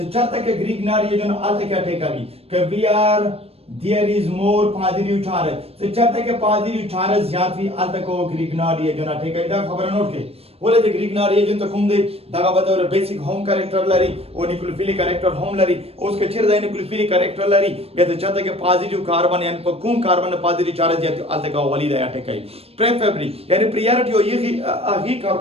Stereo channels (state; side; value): late; left; 0.28 ms